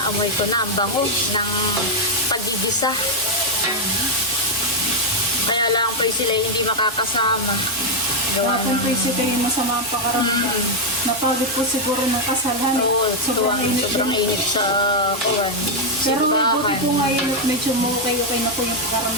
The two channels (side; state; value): both; normal; correlation 0.01